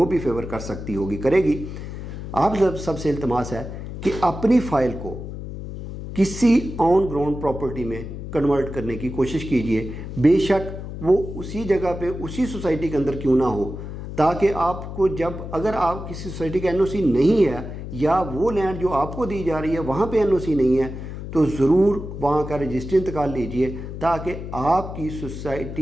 بھی فیور کر سکتی ہوگی کرے گی۔ آپ سب سے التماس ہے کہ اپنی فائل کو کسی آن گراؤنڈ پراپرٹی میں کنورٹ کرنے کی کوشش کیجیے، بے شک وہ اسی جگہ پہ اسی سوسائٹی کے اندر کیوں نہ ہو، تاکہ آپ کو جب اگر آپ کسی سوسائٹی کا NOC نہیں ہے یا وہ لینڈ جو آپ کو دی جا رہی ہے وہاں پہ NOC نہیں ہے تو ضرور وہاں کا رجسٹری انتقال لیجئے، تاکہ آپ کی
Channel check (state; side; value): noise; left; hum, 9 dB below the sound